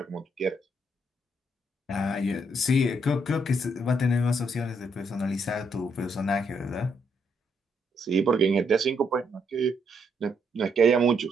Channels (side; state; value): both; normal; correlation 0.74